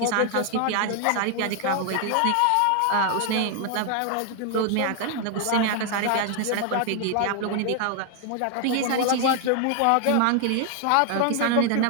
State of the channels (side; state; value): both; different; correlation 0.00